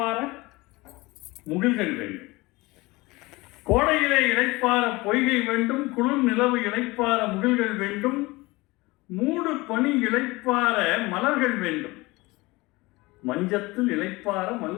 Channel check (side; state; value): right; quieter; 22.2 dB